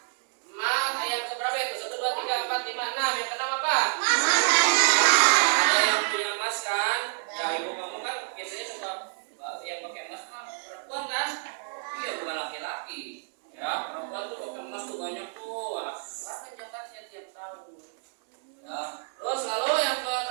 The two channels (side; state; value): left; silent; digital silence